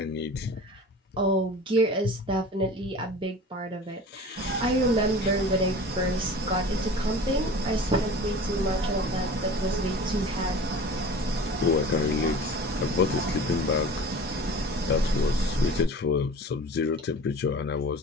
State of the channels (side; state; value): both; normal; correlation 0.39